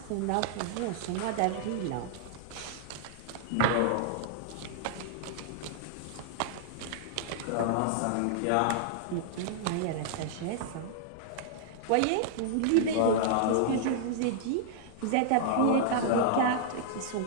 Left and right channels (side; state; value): both; different; correlation -0.01